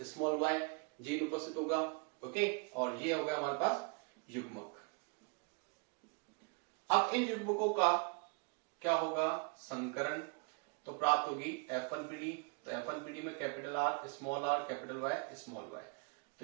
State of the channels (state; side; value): quieter; left; 33.6 dB